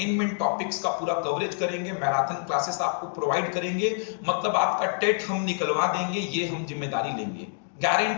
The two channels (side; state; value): right; silent; digital silence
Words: टॉपिक्स का पूरा कवरेज करेंगे, मैराथन क्लासेस आपको प्रोवाइड करेंगे। मतलब आपका टेट हम निकलवा देंगे, ये हम जिम्मेदारी लेंगे,